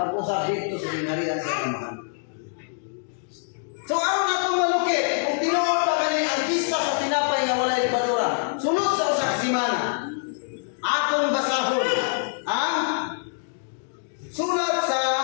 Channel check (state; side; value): silent; right; digital silence